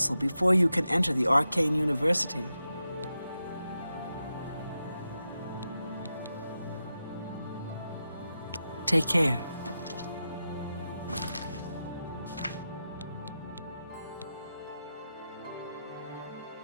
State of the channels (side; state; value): both; inverted; correlation -0.89